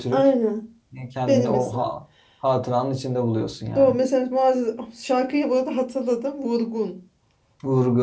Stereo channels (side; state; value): both; identical; correlation 1.00